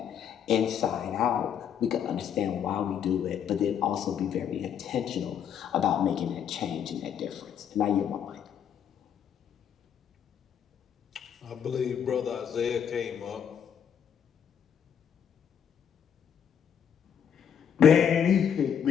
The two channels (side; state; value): right; quieter; 8.4 dB